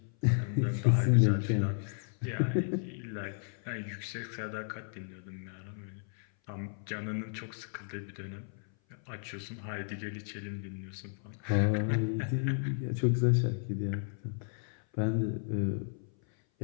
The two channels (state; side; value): silent; right; 55 dB below the other